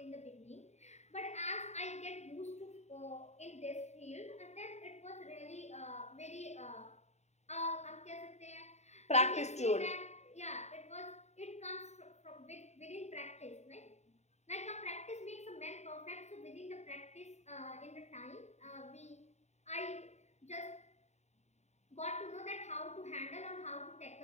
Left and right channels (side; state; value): right; late; 0.32 ms